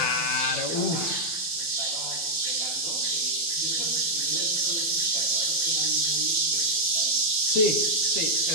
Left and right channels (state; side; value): late; right; 12 ms